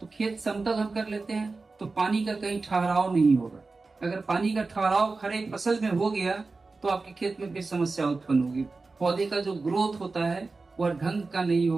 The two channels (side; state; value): left; quieter; 3.8 dB